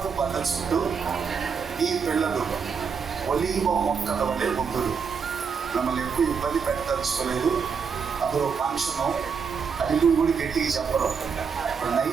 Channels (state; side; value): quieter; left; 6.0 dB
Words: బండ చుట్టూ నీ పిల్లలు ఒలీవ మొక్కల వలె ఉందురు. మిమ్మల్ని ఎక్కువ ఇబ్బంది పెట్టదలుచుకోలేదు. అందులో ఫంక్షను అది కూడా గట్టిగా చెప్పరు. ఇప్పుడు